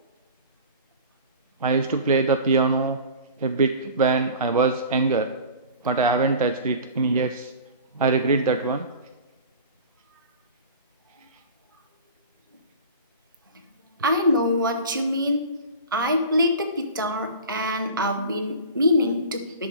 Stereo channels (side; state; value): both; inverted; correlation -0.38